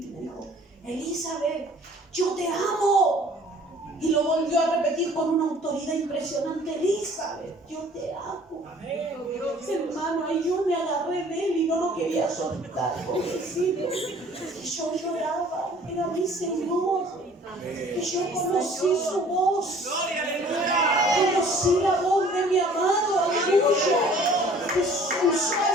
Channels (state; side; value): normal; both; correlation 0.53